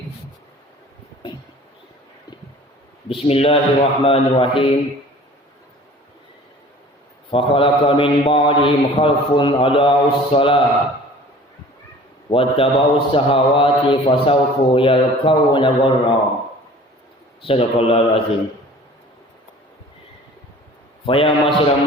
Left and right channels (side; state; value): both; normal; correlation 0.46